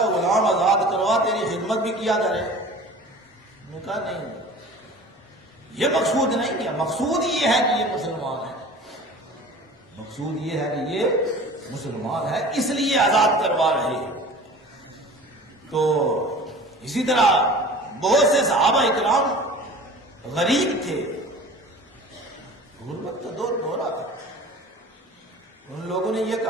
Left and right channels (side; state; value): both; normal; correlation 0.42